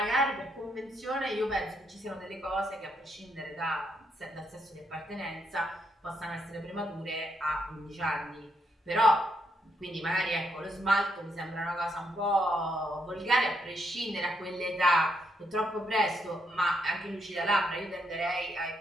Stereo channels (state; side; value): normal; both; correlation 0.77